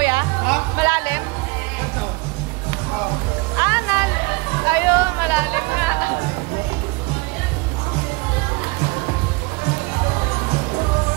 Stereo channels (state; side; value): quieter; left; 25.7 dB